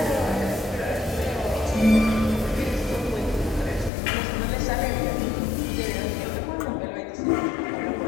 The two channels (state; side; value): drops out; right; at 3.9 s